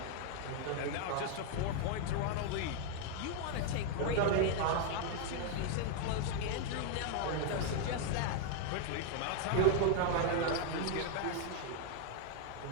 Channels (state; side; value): different; both; correlation 0.00